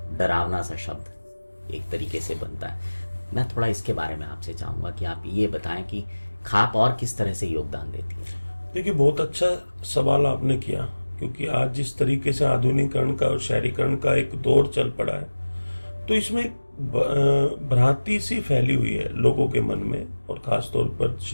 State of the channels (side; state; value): both; inverted; correlation -1.00